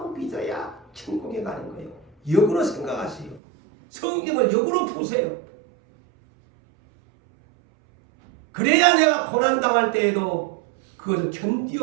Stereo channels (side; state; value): left; drops out; at 3.4 s